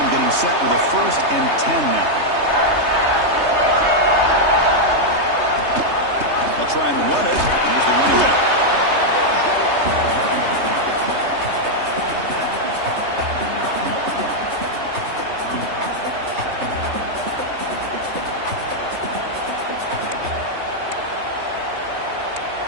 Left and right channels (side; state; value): left; late; 3.2 ms